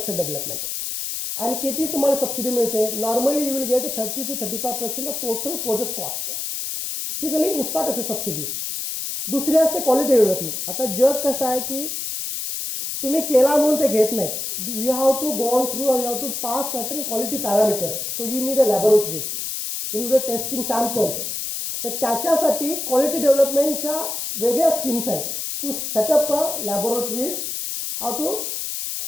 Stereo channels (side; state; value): left; noise; hiss, 4 dB below the sound